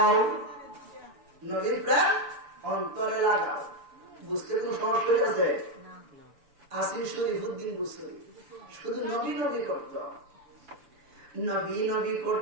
নবীর প্রেম অন্তরে লাগাও। বুঝতে কোনো সমস্যা আছে? আসিফ শরীফুদ্দিন বুসরি শুধু নবী নবী করত, নবী নবী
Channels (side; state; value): left; late; 7.0 ms